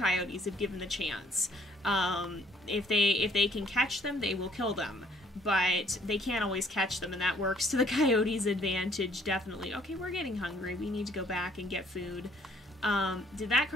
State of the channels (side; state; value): both; normal; correlation 0.63